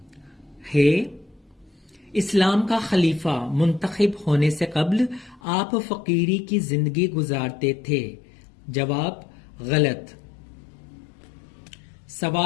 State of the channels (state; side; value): drops out; right; at 5.4 s